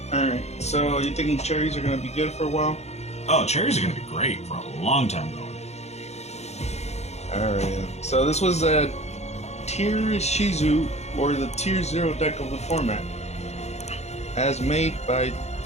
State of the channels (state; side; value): late; right; 0.32 ms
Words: Alright, so you thinking cherries are going to be good for a while? Oh, cherries are going to be great for a long time going. Alright, so this was a tier Ishizu, or the tier 0 deck of the format, as made by